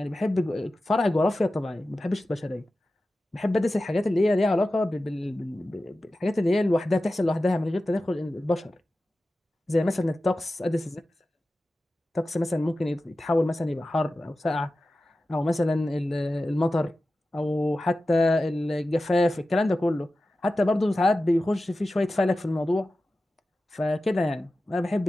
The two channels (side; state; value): both; normal; correlation 0.94